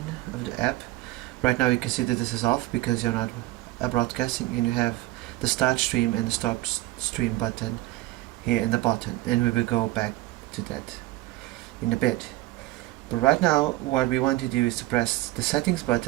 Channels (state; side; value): quieter; left; 17.8 dB